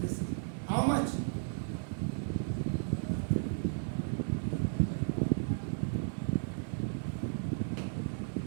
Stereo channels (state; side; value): silent; left; 55 dB below the other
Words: this how much